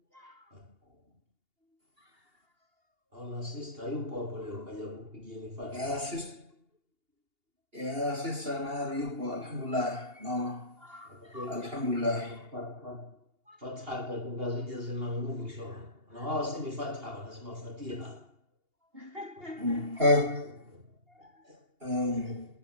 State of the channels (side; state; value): left; late; 2.8 ms